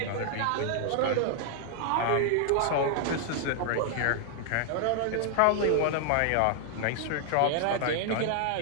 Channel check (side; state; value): both; different; correlation 0.00